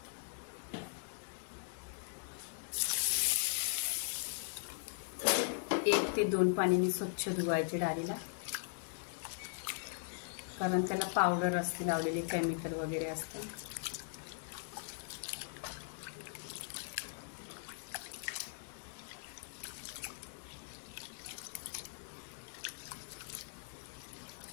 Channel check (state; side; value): silent; right; digital silence